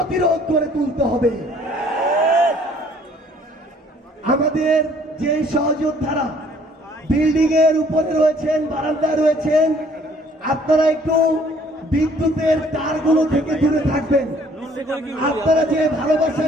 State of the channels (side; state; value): both; normal; correlation 0.59